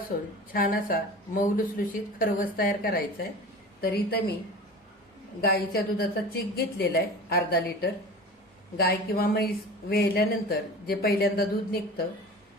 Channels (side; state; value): both; normal; correlation 0.36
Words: छान असा मऊ लुसलुशीत खरवस तयार करायचा आहे. तर इथं मी गाईच्या दुधाचा चिक घेतलेला आहे अर्धा लिटर. गाय किंवा म्हैस वेळल्यानंतर जे पहिल्यांदा दूध निघतं